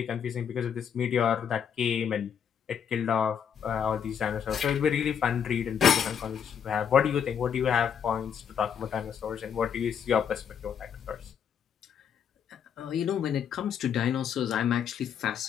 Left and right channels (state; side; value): quieter; right; 7.9 dB